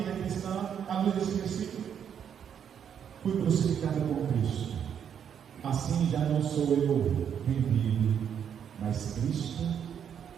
cristã, à luz desse versículo. Fui crucificado com Cristo, assim já não sou eu quem vive, mas Cristo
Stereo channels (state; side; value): quieter; left; 8.4 dB